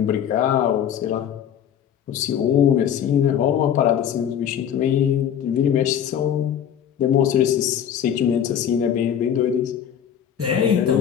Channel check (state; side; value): quieter; right; 9.2 dB